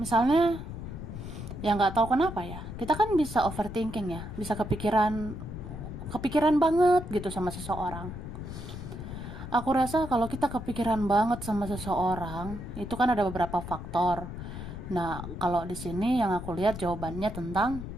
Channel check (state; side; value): noise; left; rumble, 9 dB below the sound